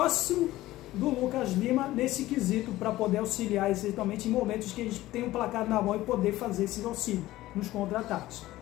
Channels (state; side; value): quieter; right; 16.4 dB